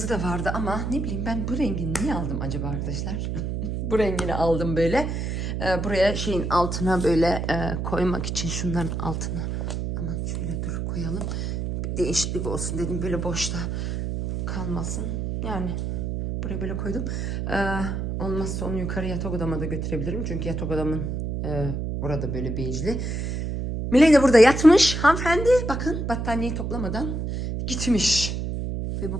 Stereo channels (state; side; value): noise; right; hum, 2 dB below the sound